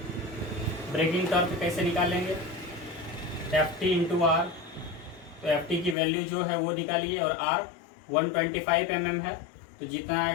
ब्रेकिंग टॉर्क कैसे निकालेंगे? Ft into R. तो Ft की वैल्यू जो है वो निकालिए और R 125 mm है, तो जितना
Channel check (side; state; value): right; drops out; at 6.0 s